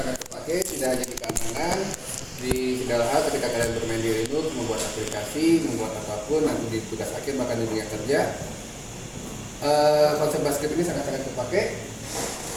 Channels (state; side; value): identical; both; correlation 1.00